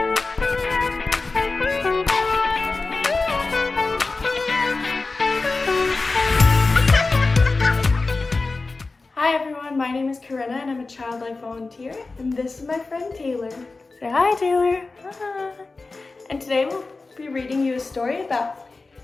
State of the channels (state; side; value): quieter; right; 3.7 dB